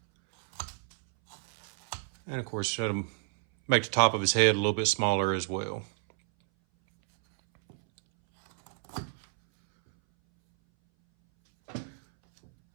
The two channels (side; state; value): left; silent; 58 dB below the other